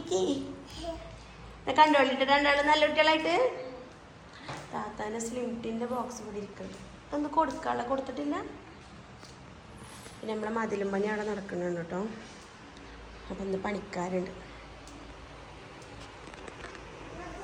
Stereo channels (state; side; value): identical; both; correlation 1.00